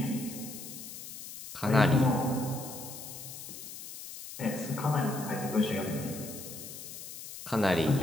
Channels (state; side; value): noise; left; hiss, 11 dB below the sound